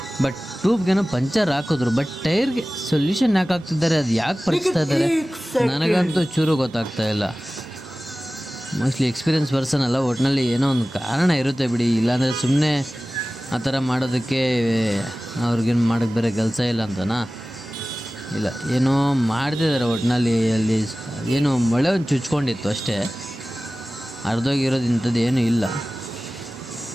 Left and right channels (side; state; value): both; normal; correlation 0.97